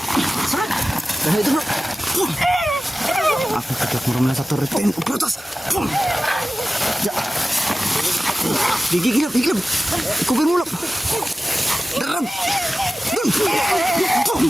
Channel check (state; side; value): normal; both; correlation 0.95